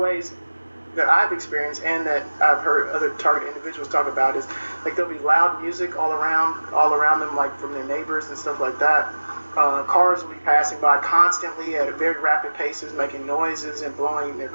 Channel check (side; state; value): both; inverted; correlation -1.00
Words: that I've experienced and that I've heard other targeted individuals talk about is like there'll be loud music all around them, like from their neighbors and stuff like that. Cars will be passing by constantly at very rapid paces, making noises and blowing their